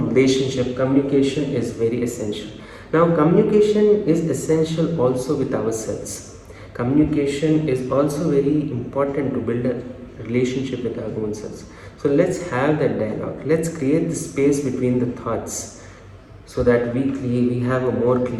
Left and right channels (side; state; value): both; identical; correlation 1.00